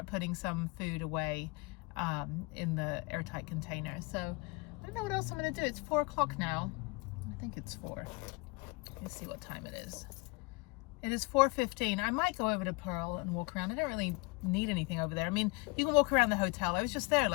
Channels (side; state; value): right; quieter; 27.8 dB